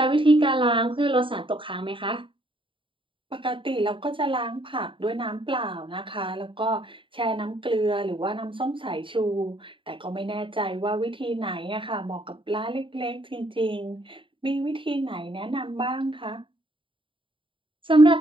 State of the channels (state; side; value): late; left; 0.25 ms